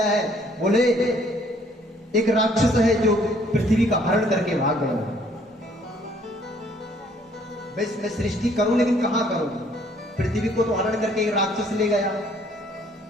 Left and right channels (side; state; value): both; normal; correlation 0.62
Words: है? बोले एक राक्षस है जो पृथ्वी का हरण करके भाग गया। बस मैं सृष्टि करूं लेकिन कहां करूं? पृथ्वी को तो हरण करके एक राक्षस ले गया।